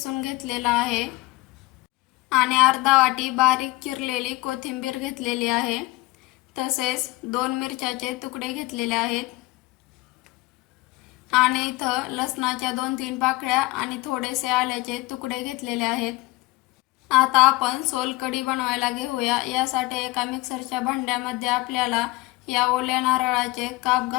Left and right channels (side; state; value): right; quieter; 20.7 dB